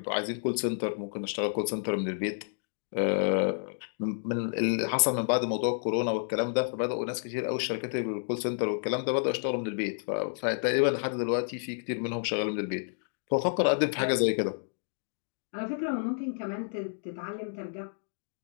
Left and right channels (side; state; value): right; silent; digital silence